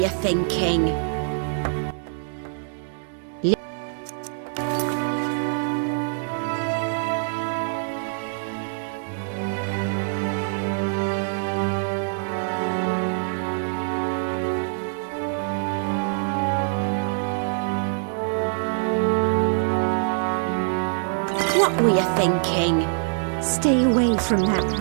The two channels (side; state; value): left; silent; digital silence